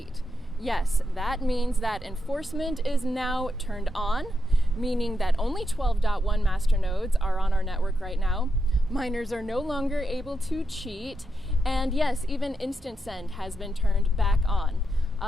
Yes, that means that enforcement is now turned on, meaning that only 12.1 masternodes are on our network right now. Miners are no longer able to cheat, and yes, even instant send has been turned back on.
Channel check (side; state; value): both; normal; correlation 0.85